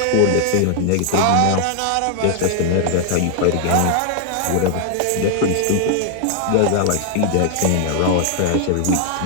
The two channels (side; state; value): both; different; correlation 0.00